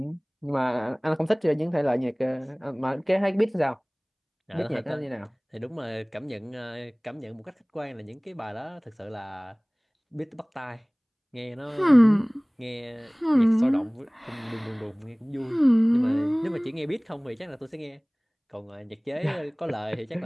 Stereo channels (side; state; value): both; identical; correlation 1.00